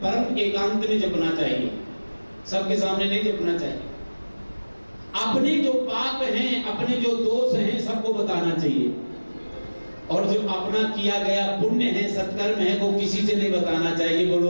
परम एकांत में जपना चाहिए, सबके सामने नहीं जपना चाहिए। अपने जो पाप हैं, अपने जो दोष हैं, सबको बताना चाहिए, और जो अपना किया गया पुण्य है, सत्कर्म है, वो किसी से नहीं बताना चाहिए।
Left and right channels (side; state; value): both; inverted; correlation -1.00